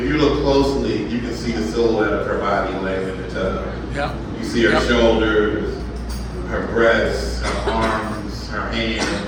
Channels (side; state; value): both; identical; correlation 1.00